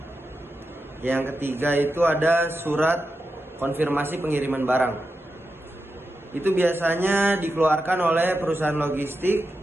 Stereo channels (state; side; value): normal; both; correlation 0.89